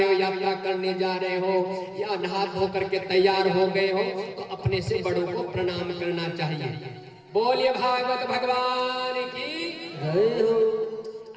हो, यात्रा करने जा रहे हो या नहा धो करके तैयार हो गए हो तो अपने से बड़ों को प्रणाम करना चाहिए। बोलिए भागवत भगवान की जय हो।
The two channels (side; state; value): both; identical; correlation 1.00